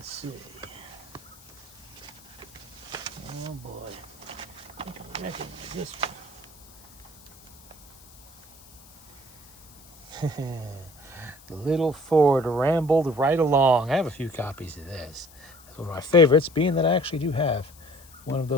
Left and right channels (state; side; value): noise; left; hiss, 23 dB below the sound